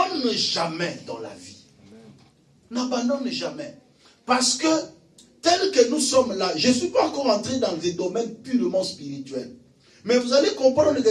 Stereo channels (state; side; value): identical; both; correlation 1.00